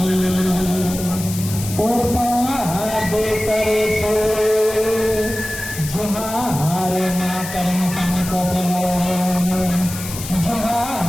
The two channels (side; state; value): left; noise; hiss, 10 dB below the sound